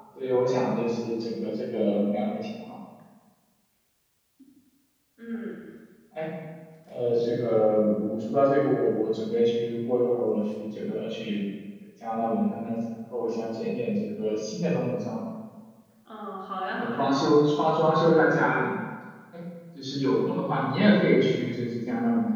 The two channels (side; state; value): both; identical; correlation 1.00